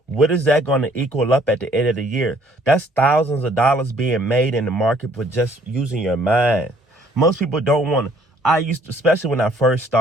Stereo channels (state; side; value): normal; both; correlation 0.62